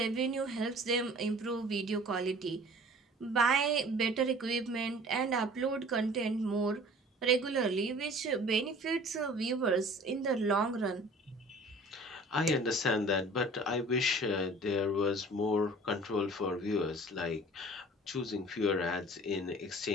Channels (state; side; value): normal; both; correlation 0.46